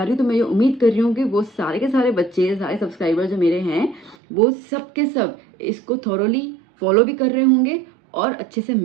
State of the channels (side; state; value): left; drops out; at 4.2 s